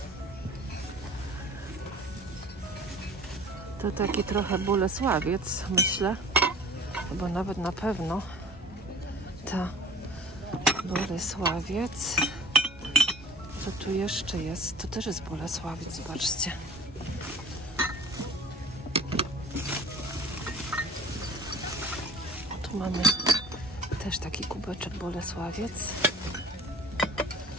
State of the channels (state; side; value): normal; both; correlation 0.46